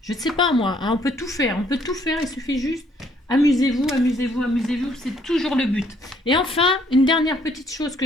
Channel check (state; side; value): normal; both; correlation 0.66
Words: Je ne sais pas moi, hein, on peut tout faire, il suffit juste, amusez-vous, c'est toujours le but. Et enfin, une dernière petite chose,